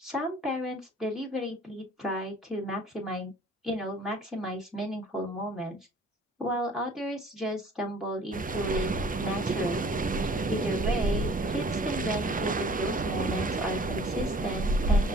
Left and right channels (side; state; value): both; normal; correlation 0.51